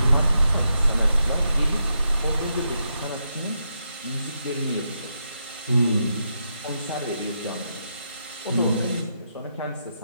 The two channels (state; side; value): inverted; both; correlation -0.83